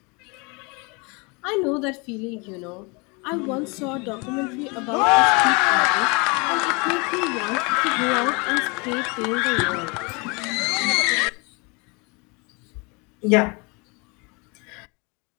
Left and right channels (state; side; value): quieter; right; 29.8 dB